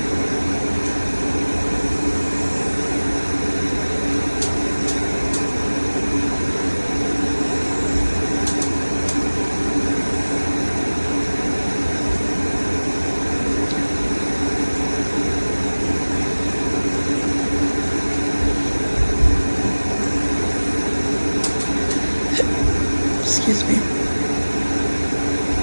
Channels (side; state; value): both; inverted; correlation -1.00